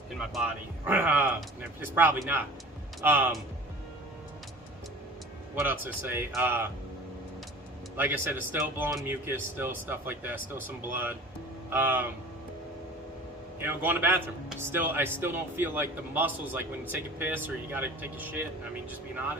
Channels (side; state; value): both; normal; correlation 0.41